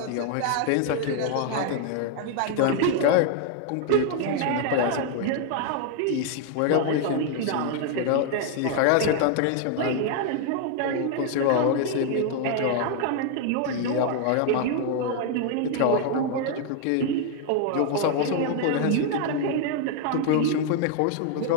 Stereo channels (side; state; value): both; different; correlation 0.00